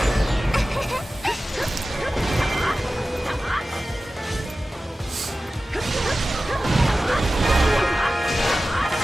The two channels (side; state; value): both; normal; correlation 0.95